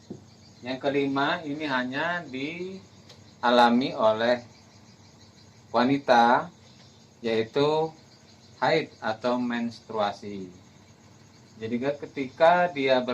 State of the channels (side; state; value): both; identical; correlation 1.00